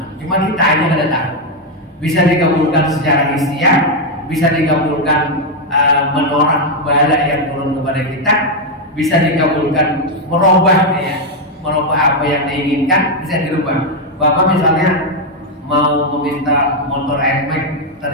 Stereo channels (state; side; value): normal; both; correlation 0.02